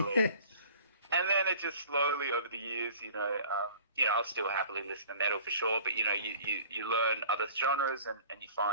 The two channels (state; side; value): inverted; both; correlation -0.47